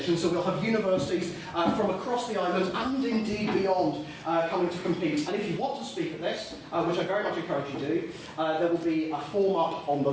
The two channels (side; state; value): both; identical; correlation 1.00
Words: so we'll have universities from across the island and indeed beyond coming to compete. And if you want to speak at this, which I very much encourage you to do, there will be a form up on the